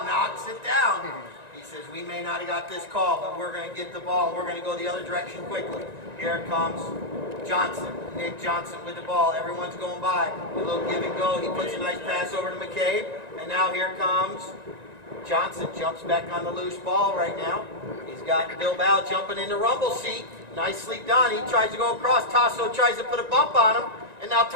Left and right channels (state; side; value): late; left; 1.9 ms